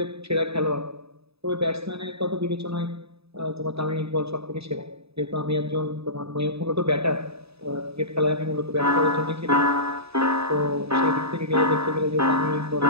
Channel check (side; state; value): left; late; 0.78 ms